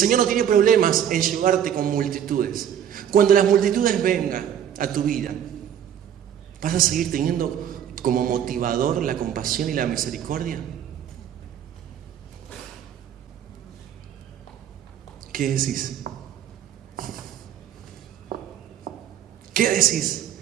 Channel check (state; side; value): quieter; left; 9.7 dB